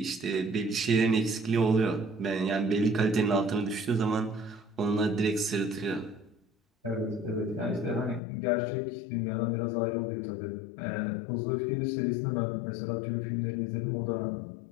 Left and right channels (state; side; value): drops out; right; at 8.2 s